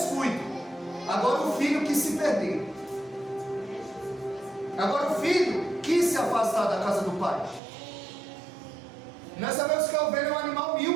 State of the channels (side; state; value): left; drops out; at 7.6 s